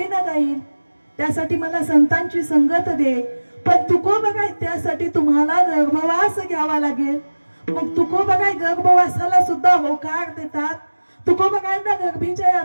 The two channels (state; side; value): inverted; both; correlation -1.00